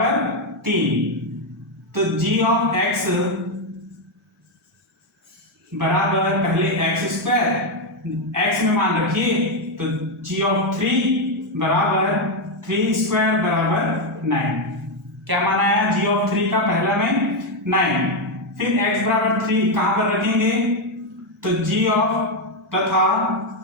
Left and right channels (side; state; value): both; normal; correlation 0.04